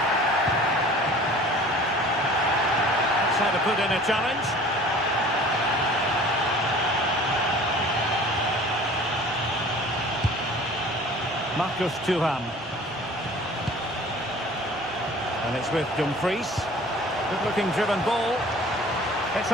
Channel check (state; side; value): normal; both; correlation 0.46